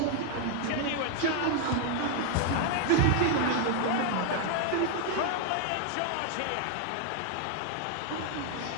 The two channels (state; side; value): different; both; correlation 0.00